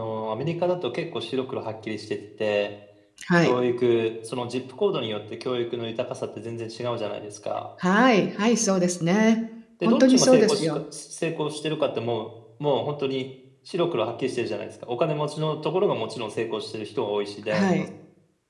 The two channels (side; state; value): both; identical; correlation 1.00